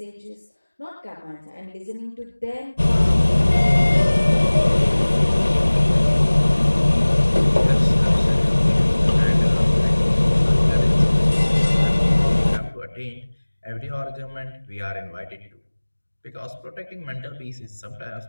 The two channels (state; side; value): inverted; both; correlation -1.00